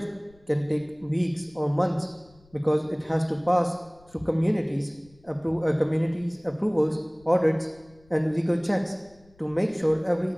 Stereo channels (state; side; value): noise; left; rumble, 29 dB below the sound